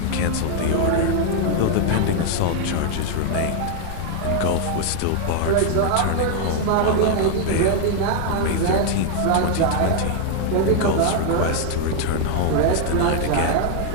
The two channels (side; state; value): both; different; correlation 0.00